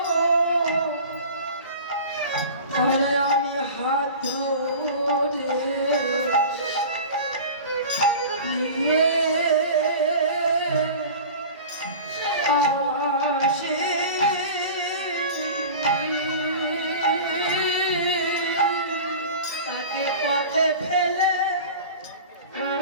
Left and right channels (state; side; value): inverted; both; correlation -0.36